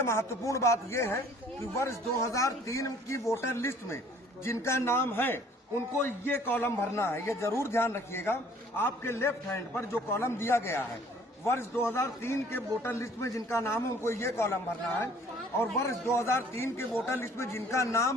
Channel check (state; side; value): normal; both; correlation 0.55